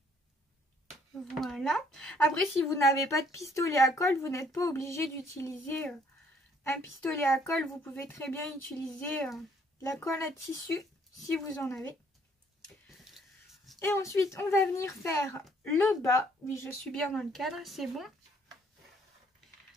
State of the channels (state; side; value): normal; both; correlation 0.64